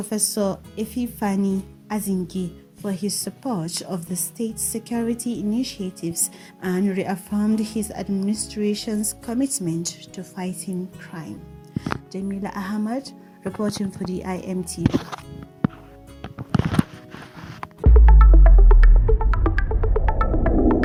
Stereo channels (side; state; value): both; identical; correlation 1.00